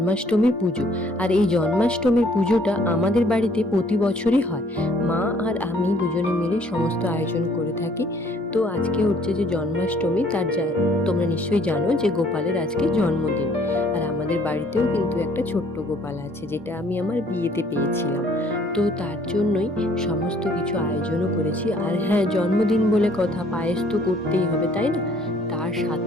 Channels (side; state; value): both; normal; correlation 0.60